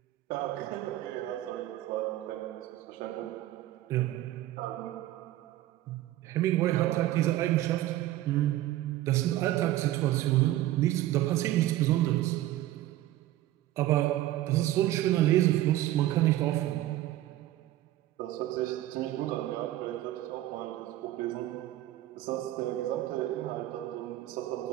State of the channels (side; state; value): left; quieter; 14.8 dB